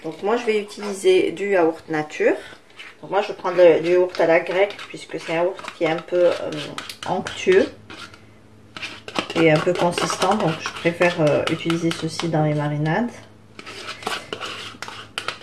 Donc moi je vais utiliser du yaourt nature. Donc moi je vais prendre du yaourt à la grecque puisque c'est un yaourt qui est un peu onctueux et un peu consistant. Donc je préfère utiliser ceci dans les marinades.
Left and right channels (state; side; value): identical; both; correlation 1.00